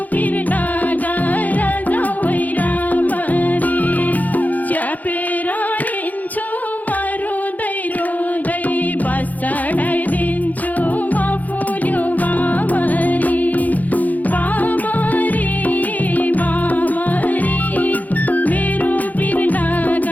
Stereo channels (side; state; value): right; late; 0.080 ms